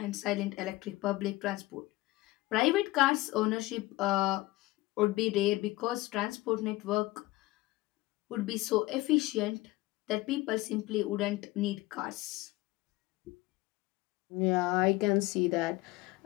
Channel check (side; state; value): right; quieter; 19.3 dB